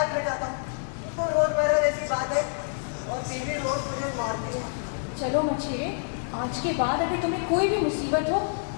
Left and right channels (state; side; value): silent; right; 60 dB below the other